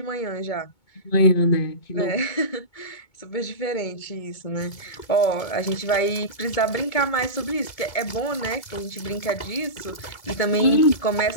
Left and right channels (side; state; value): right; late; 2.2 ms